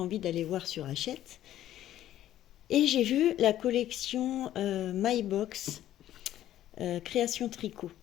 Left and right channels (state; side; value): quieter; right; 12.6 dB